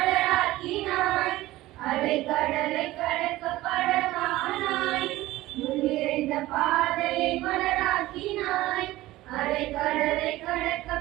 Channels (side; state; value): left; quieter; 17.2 dB